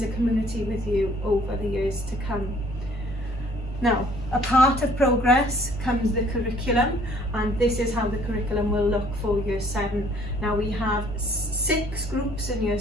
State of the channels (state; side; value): normal; both; correlation 0.58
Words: a community with you over the years to come. Now, a part of progress comes the curriculum, and this is how the curriculum will look for Year 7. Now, we have 6 groups in Year